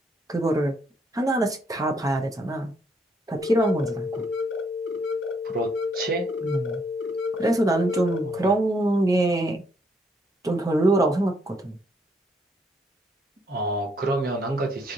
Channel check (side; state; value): both; normal; correlation 0.71